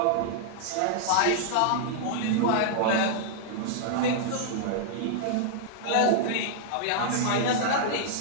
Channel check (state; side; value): different; both; correlation -0.01